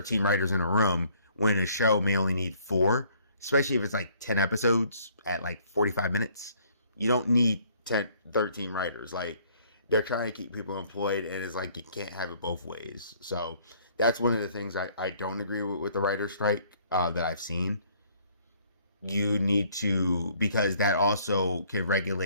writers in a room when a show may only need 4, especially if it's like 10 episodes at like 45 minutes. You don't need 13 writers. Like, they're trying to keep people employed, and it's like you can't have it both ways. So that's one of the things I don't agree with the writer's strike that I've seen. You need to, because that also can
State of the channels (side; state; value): both; inverted; correlation -0.61